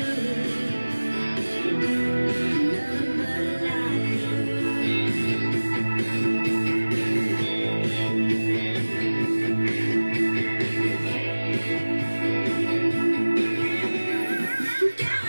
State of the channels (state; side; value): inverted; both; correlation -1.00